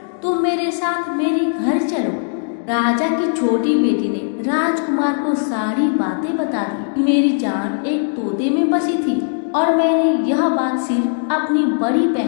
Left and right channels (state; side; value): silent; right; digital silence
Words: तुम मेरे साथ मेरे घर चलो। राजा की छोटी बेटी ने राजकुमार को सारी बातें बता दी। मेरी जान एक तोते में बसी थी और मैंने यह बात सिर्फ अपनी बड़ी